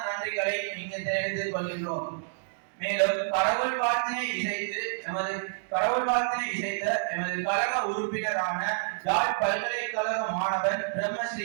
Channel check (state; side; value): silent; left; digital silence